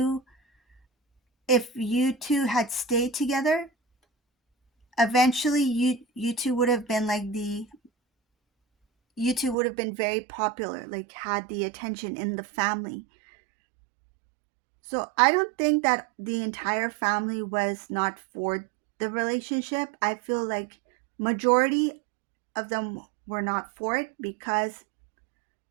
if you two had stayed together, eventually you two would have been like you two would have been very popular, like had the attention in the family. So I don't think that the entire family was not for the relationship. I feel like majority of them were not for it because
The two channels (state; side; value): drops out; left; at 9.6 s